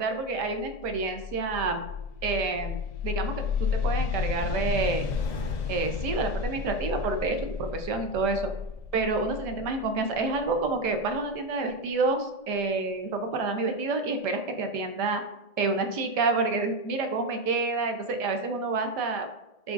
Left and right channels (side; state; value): right; late; 1.7 ms